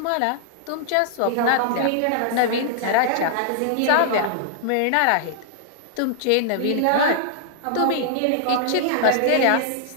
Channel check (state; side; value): different; both; correlation -0.01